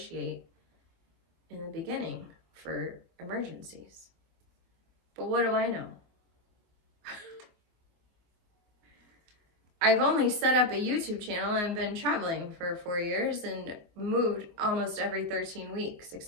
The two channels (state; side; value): late; left; 24 ms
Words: in the beginning for emergencies. But what do I know? I've only set up a YouTube channel and been traveling for 4 years and moved almost every 13 weeks,